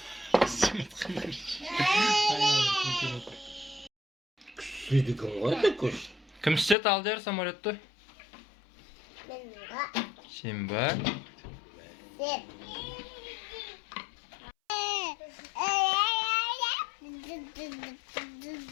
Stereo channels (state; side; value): drops out; right; at 6.8 s